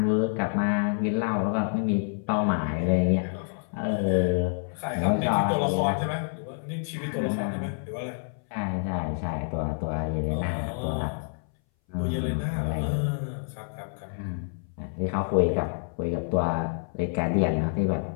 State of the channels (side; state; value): right; silent; 60 dB below the other